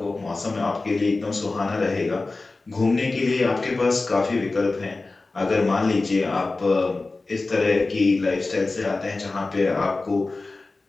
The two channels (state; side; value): quieter; right; 3.5 dB